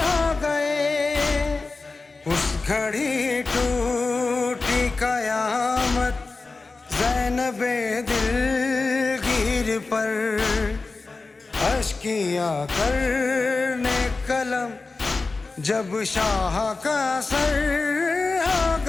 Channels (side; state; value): right; quieter; 3.8 dB